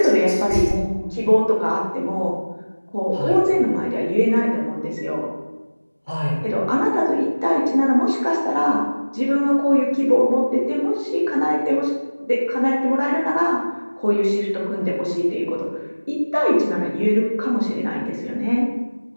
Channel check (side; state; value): both; inverted; correlation -1.00